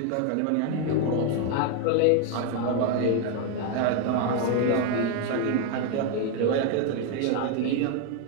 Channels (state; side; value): different; both; correlation 0.01